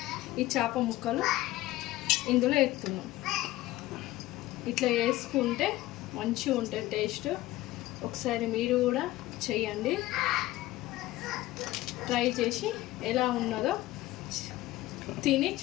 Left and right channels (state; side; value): quieter; right; 16.9 dB